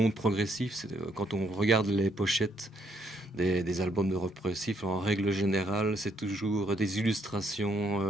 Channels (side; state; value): both; normal; correlation 0.72